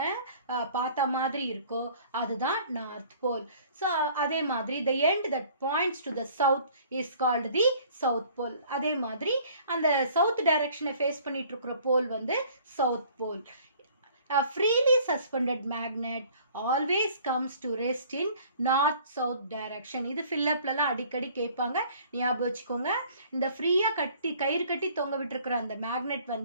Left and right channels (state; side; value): inverted; both; correlation -0.53